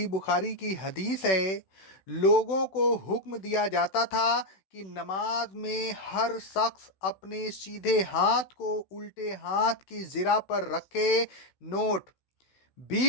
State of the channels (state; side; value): late; right; 16 ms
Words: बुखारी की हदीस है, लोगों को हुक्म दिया जाता था कि नमाज में हर शख्स अपने सीधे हाथ को उल्टे हाथ की ज़िरा पर रखे। नोट: